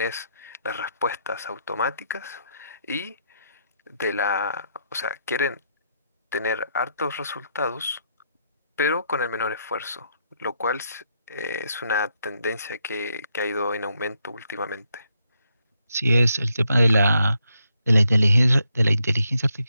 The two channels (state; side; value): inverted; both; correlation -0.78